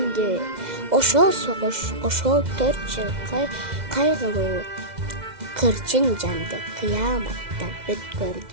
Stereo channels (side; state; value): left; late; 2.1 ms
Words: Ошол согуш, ошол 4 жыл кайгылуу кырчын жанды кыяматтан